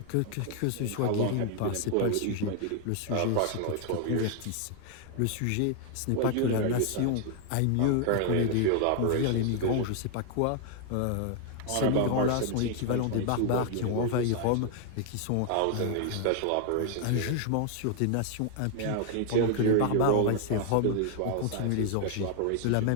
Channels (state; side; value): different; both; correlation 0.00